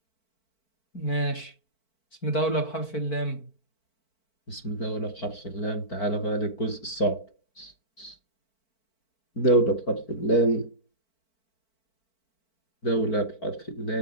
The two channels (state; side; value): late; right; 4.5 ms